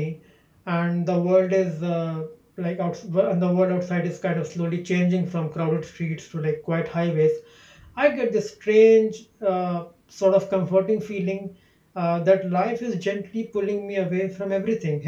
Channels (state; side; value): identical; both; correlation 1.00